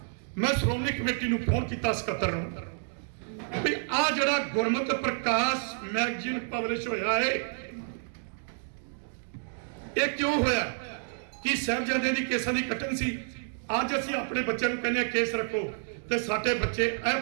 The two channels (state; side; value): silent; left; digital silence